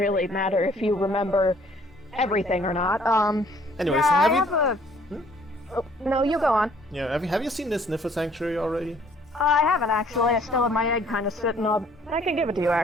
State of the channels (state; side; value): normal; both; correlation 0.59